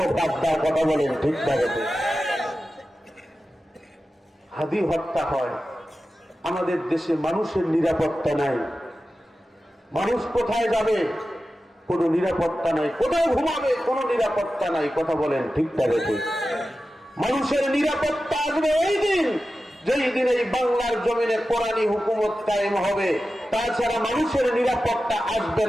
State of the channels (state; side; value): normal; both; correlation 0.93